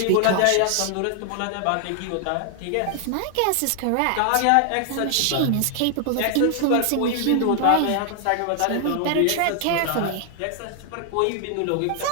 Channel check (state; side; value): different; both; correlation 0.00